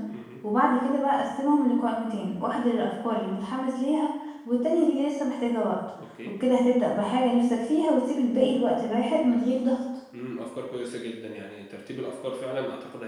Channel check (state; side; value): identical; both; correlation 1.00